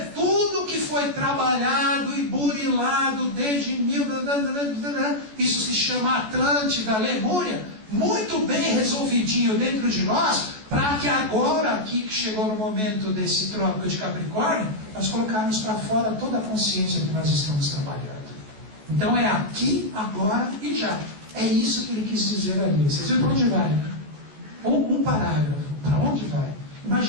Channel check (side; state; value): left; late; 14 ms